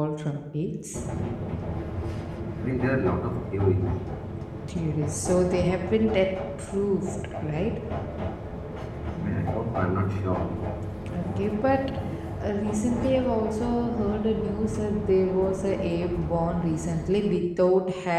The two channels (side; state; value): both; identical; correlation 1.00